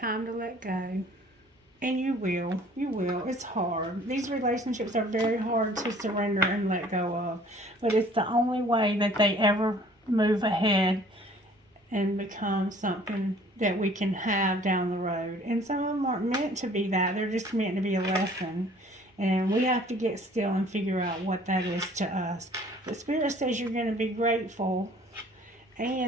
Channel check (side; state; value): both; normal; correlation 0.54